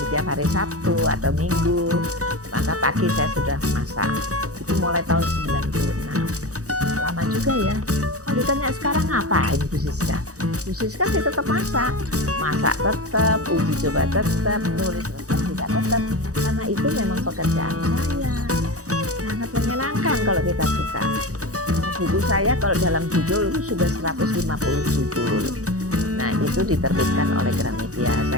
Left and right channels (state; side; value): late; left; 0.66 ms